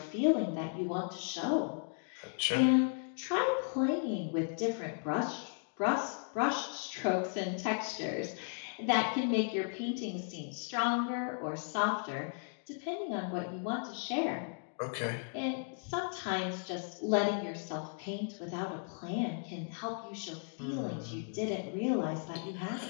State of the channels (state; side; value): silent; right; 54 dB below the other